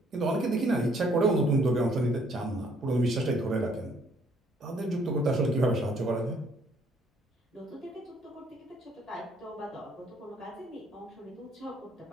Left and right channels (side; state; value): both; normal; correlation 0.64